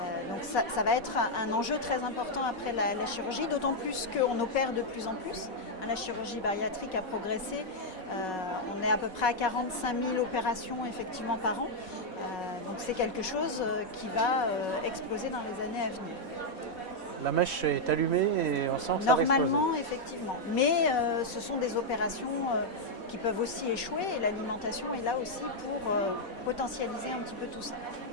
Donc ça va être un enjeu très important après la chirurgie, d'autant plus qu'on opère de plus en plus. La chirurgie bariatrique a progressé. On est à peu près à 45 000 opérations effectivement par an. Donc c'est quelque chose qui va exploser dans les années à venir. La mèche est allumée et on sent que ça va Normalement, effectivement. Mais ce sont des opérations qui peuvent aussi échouer et l'alimentation est là aussi pour potentialiser un petit peu tout ça.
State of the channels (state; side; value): late; right; 4.1 ms